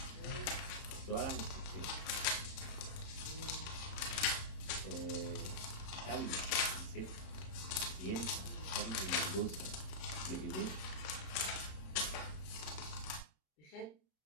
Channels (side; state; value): right; late; 27 ms